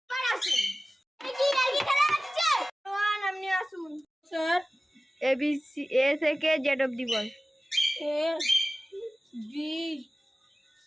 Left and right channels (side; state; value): both; normal; correlation 0.97